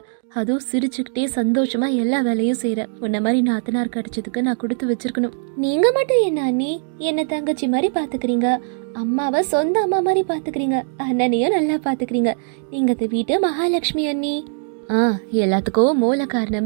அதுவும் சிரிச்சுக்கிட்டே சந்தோஷமா எல்லா வேலையும் செய்யற. உன்ன மாதிரி நாத்தனார் கிடைச்சதுக்கு நான் கொடுத்து வச்சிருக்கணும். நீங்க மட்டும் என்ன அண்ணி என்ன தங்கச்சி மாதிரி பாத்துக்கிறீங்க, அம்மாவை சொந்த அம்மா மாதிரி பாத்துக்கிறீங்க, அண்ணனையும் நல்லா பாத்துக்கிறீங்க. நீங்க இந்த வீட்டு மகாலட்சுமி அண்ணி. எல்லாத்துக்கும் மூல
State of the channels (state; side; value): silent; left; digital silence